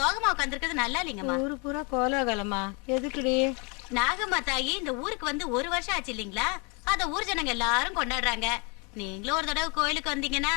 உட்காந்துருக்கிறது நல்லா இல்லைங்கம்மா. ஊரு பூரா கோலாகலமா? எதுக்குடி? நாகம்மா தாயி இந்த ஊருக்கு வந்து 1 வருஷம் ஆச்சு இல்லீங்களா? அத ஊர் ஜனங்க எல்லாரும் கொண்டாடுறாங்க. நீங்களும் ஒரு தடவை கோயிலுக்கு வந்தீங்கன்னா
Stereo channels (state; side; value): quieter; right; 32.0 dB